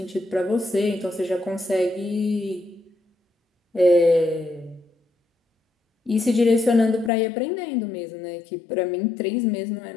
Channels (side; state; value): right; drops out; at 7.1 s